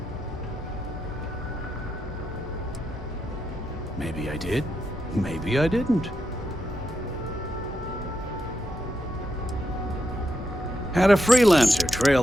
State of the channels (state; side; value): normal; both; correlation 0.83